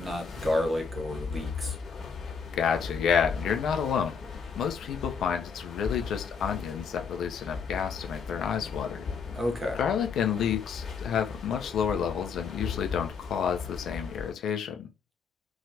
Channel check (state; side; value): quieter; right; 5.9 dB